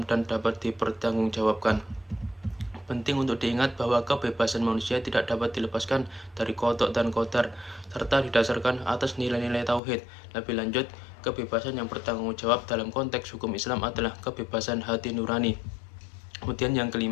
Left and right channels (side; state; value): right; drops out; at 9.8 s